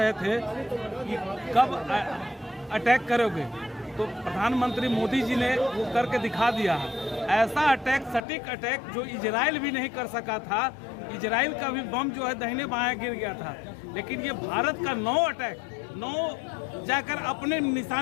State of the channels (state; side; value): drops out; right; at 8.2 s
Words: थे कि कब अटैक करोगे, तो प्रधानमंत्री मोदी जी ने वो करके दिखा दिया है। ऐसा अटैक, सटीक अटैक जो इजराइल भी नहीं कर सका था। इजराइल का भी बम जो है दाहिने बाएं गिर गया था, लेकिन ये भारत का 9 अटैक 9 जाकर अपने